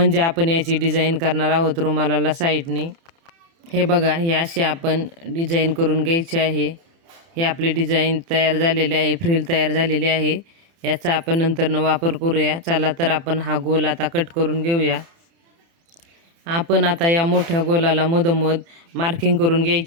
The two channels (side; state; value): left; late; 30 ms